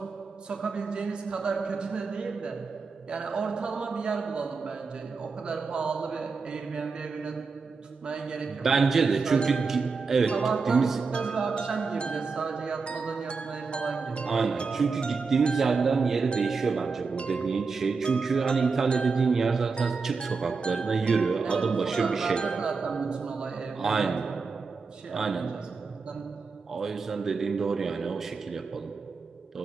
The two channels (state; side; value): quieter; left; 4.7 dB